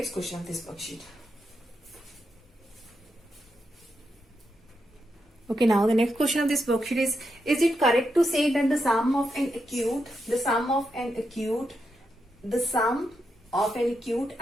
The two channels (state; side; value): normal; both; correlation 0.84